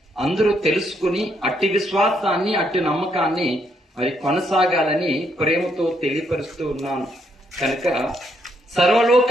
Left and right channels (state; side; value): normal; both; correlation 0.74